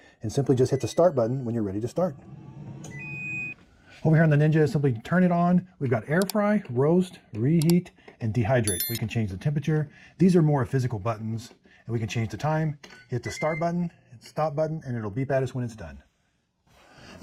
and simply just hit the start button when you're ready to start. Over here on the Ninja, simply turn it on. We've got air fry, roast, reheat, and dehydrate. We can change the temperature. These are more physical buttons, and we can change the time. Hit the start button, hit the stop button, and it'll beep at us when it's done.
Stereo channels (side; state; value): both; identical; correlation 1.00